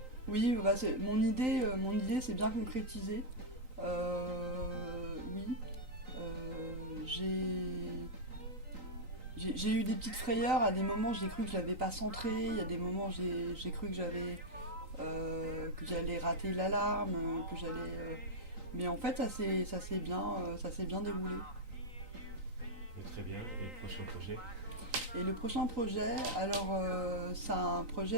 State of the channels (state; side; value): late; left; 3.9 ms